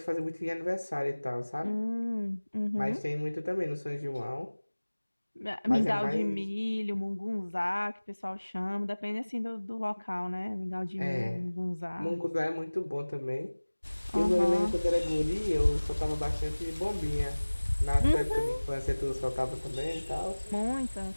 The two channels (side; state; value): both; inverted; correlation -1.00